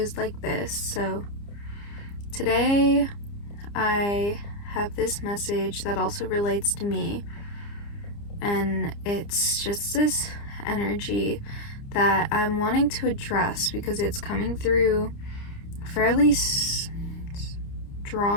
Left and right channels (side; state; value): right; late; 29 ms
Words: like this. So today I have this message that also relates to me, and it's just this energy that I'm wanting to address because it's coming through fairly